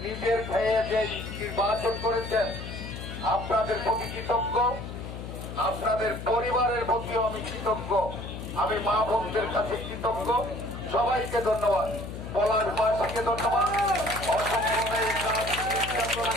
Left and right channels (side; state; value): left; noise; hum, 9 dB below the sound